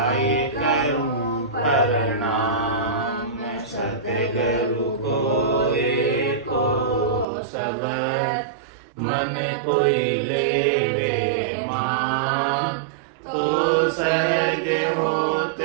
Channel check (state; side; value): drops out; left; at 7.2 s